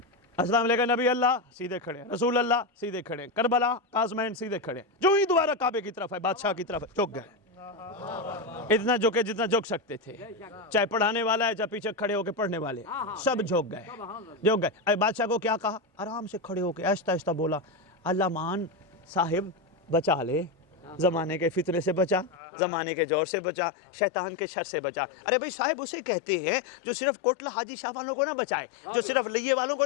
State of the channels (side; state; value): right; drops out; at 22.4 s